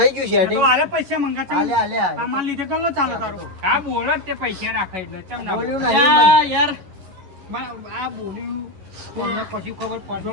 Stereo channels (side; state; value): left; late; 11 ms